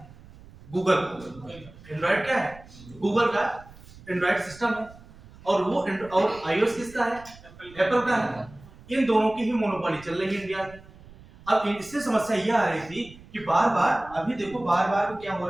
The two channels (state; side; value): noise; right; rumble, 21 dB below the sound